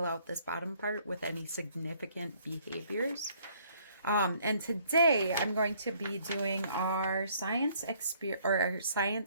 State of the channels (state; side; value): inverted; both; correlation -0.63